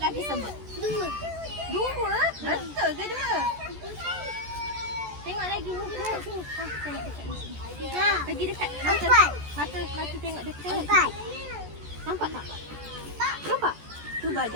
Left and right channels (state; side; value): late; left; 14 ms